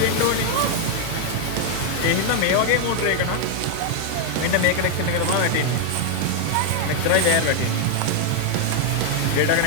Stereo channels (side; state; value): both; different; correlation 0.00